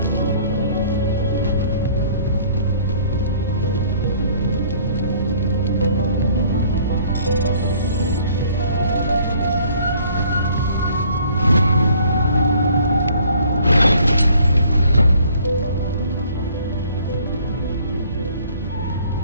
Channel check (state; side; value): inverted; both; correlation -0.57